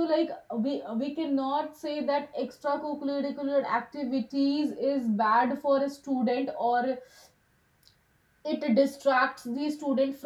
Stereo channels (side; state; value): both; identical; correlation 1.00